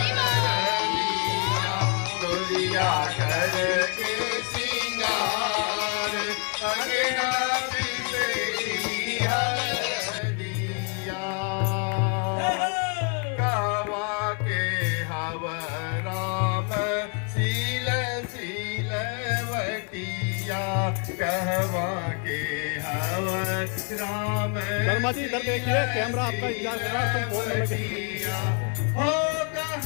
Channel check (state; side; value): quieter; right; 38.0 dB